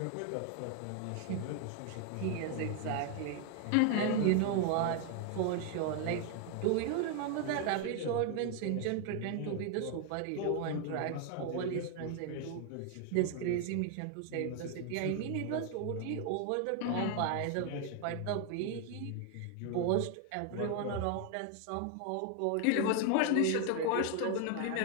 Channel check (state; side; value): different; both; correlation 0.00